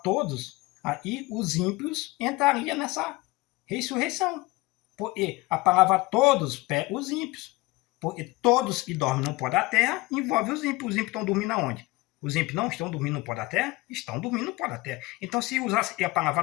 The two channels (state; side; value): quieter; right; 21.3 dB